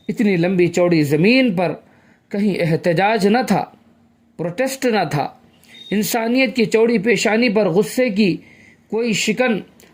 اتنی لمبی چوڑی زمین پر کہیں احتجاج نہ تھا، پروٹیسٹ نہ تھا. انسانیت کی چوڑی پیشانی پر غصے کی کوئی شکن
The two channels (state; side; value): identical; both; correlation 1.00